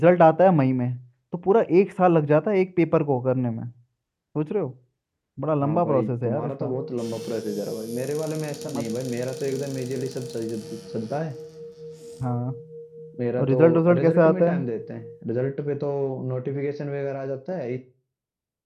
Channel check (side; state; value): both; identical; correlation 1.00